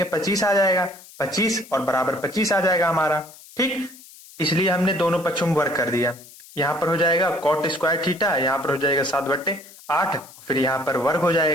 25 आ जाएगा, 25 और बराबर 25 आ जाएगा हमारा। ठीक, इसलिए हमने दोनों पक्षों में वर्ग कर दिया। यहां पर हो जाएगा कॉट स्क्वायर थीटा, यहां पर हो जाएगा 7/8, फिर यहां पर वर्ग हो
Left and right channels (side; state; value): left; noise; hiss, 21 dB below the sound